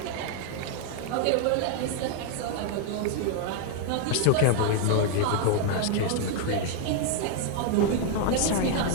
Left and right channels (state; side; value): different; both; correlation 0.00